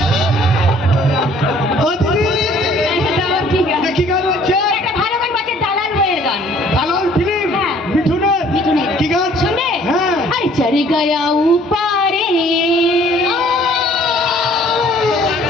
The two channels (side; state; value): both; normal; correlation 0.57